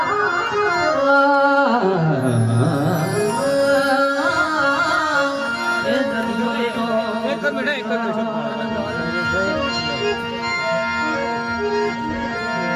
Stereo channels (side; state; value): both; identical; correlation 1.00